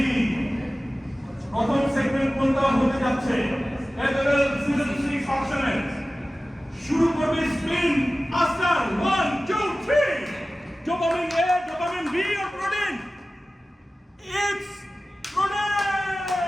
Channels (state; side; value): normal; both; correlation 0.96